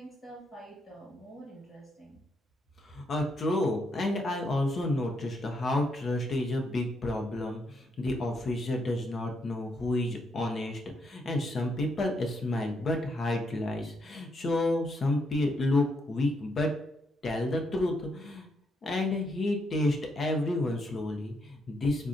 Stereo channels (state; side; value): normal; both; correlation 0.77